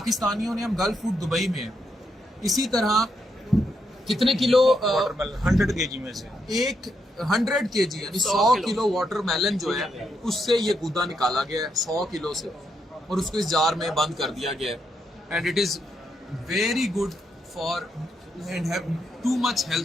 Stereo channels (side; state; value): both; normal; correlation 0.80